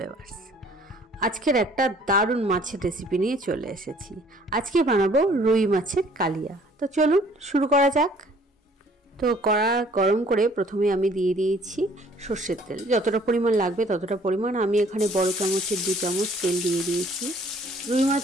আজকের একটা দারুণ মাছের রেসিপি নিয়ে চলে এসেছি। আজকে বানাবো রুই মাছের কালিয়া। তো চলুন শুরু করা যাক। তো কড়া গরম করে প্রথমে আমি দিয়ে দিয়েছি সর্ষের তেল। যতটা পরিমাণ লাগবে ততটা পরিমাণ, আমি এখানে বড় চামচের 2 চামচ তেল দিয়ে দিয়েছি। রুই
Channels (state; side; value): normal; both; correlation 0.57